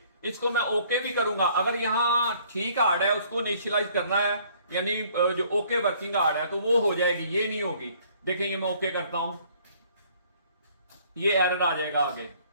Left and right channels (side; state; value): both; inverted; correlation -0.59